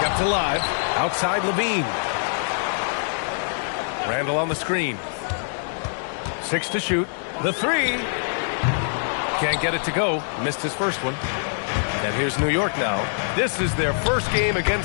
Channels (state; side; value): silent; right; digital silence